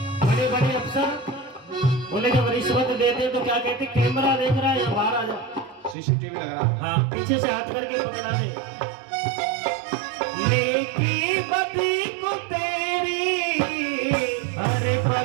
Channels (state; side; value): drops out; left; at 6.0 s